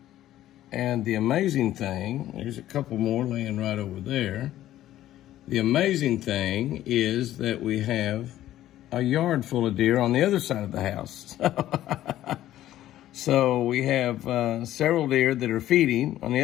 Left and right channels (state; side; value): quieter; right; 13.4 dB